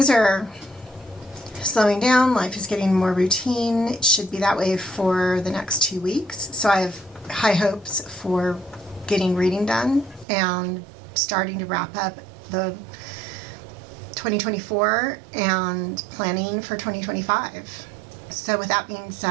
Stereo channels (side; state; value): left; drops out; at 10.2 s